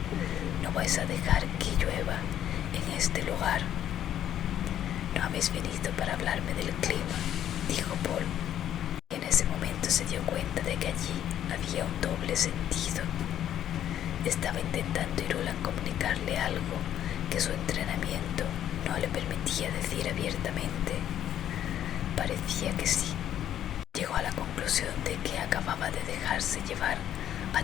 No vais a dejar que llueva en este lugar. No habéis venido para hablarme del clima, dijo Paul. Y en ese momento se dio cuenta de que allí había un doble sentido. Estaba intentando Irulan comunicarle algo que su entrenamiento no le permitía decir abiertamente. Parecía que sí. Llegó a la conclusión de que acababa de dejarse llevar a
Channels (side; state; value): right; quieter; 10.9 dB